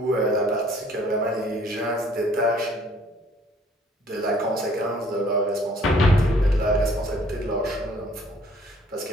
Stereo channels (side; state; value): both; normal; correlation 0.59